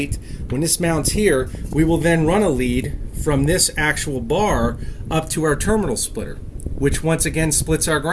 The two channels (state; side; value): identical; both; correlation 1.00